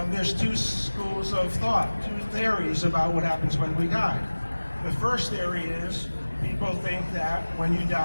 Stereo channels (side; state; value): both; inverted; correlation -1.00